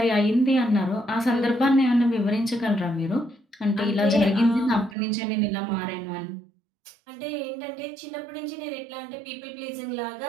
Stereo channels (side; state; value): left; drops out; at 5.0 s